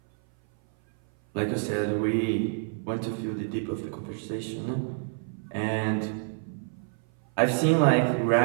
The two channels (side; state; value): left; silent; 56 dB below the other